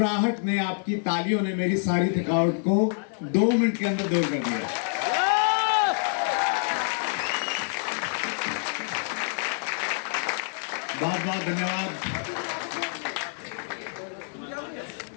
ने, आपकी तालियों ने मेरी सारी थकावट को 2 मिनट के अंदर दूर कर दिया। बहुत बहुत धन्यवाद।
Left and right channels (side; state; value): right; silent; 60 dB below the other